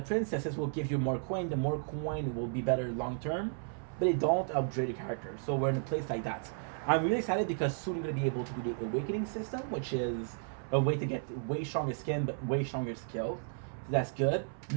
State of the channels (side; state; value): left; silent; 55 dB below the other